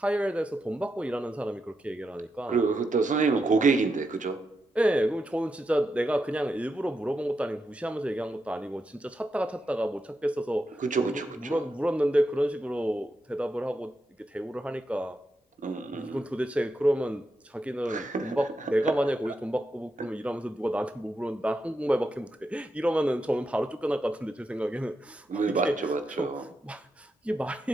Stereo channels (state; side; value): normal; both; correlation 0.85